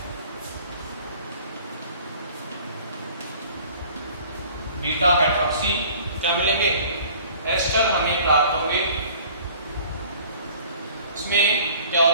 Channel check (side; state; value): both; inverted; correlation -0.50